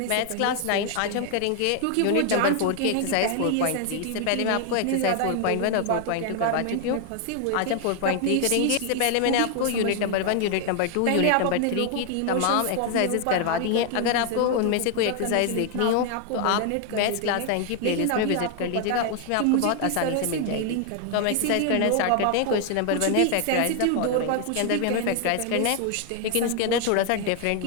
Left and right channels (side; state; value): both; different; correlation 0.00